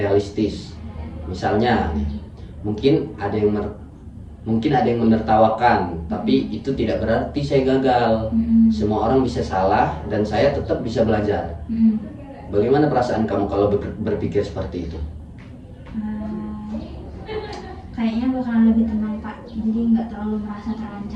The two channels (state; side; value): identical; both; correlation 1.00